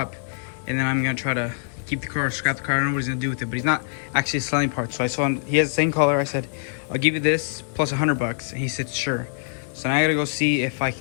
and then I'm going to try to keep the car, scrap the car. I don't know what he's going to do with it, but he's not actually selling parts. So I saw him. He has the same color. I said, I'll give you this plus 100 bucks. And he said, sure. So now I got to go see if I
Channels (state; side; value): silent; right; digital silence